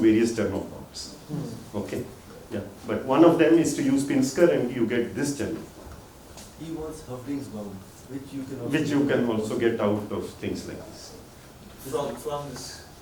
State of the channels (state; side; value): identical; both; correlation 1.00